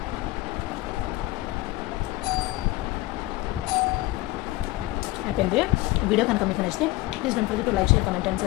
అయిపోయింది. వీడియో కనుక మీకు నచ్చితే please don't forget to like, share, comment and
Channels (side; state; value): right; quieter; 18.8 dB